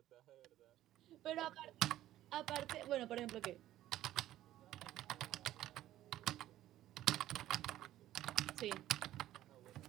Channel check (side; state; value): left; quieter; 13.7 dB